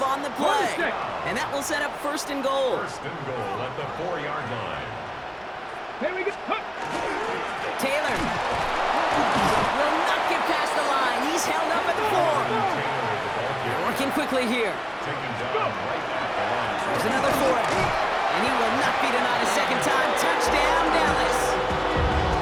on the play. And that will set up first and goal. First and goal at the 4-yard line. Here we go. Taylor will not get past the line. He's held up at the 4. They're working quickly here. Taken down right at the line. There's another for it. And he will not be denied a second time. Touchdown, Dallas.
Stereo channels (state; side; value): identical; both; correlation 1.00